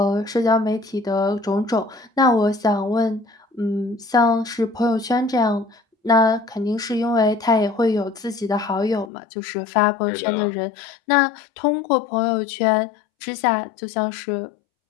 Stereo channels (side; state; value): right; drops out; at 9.1 s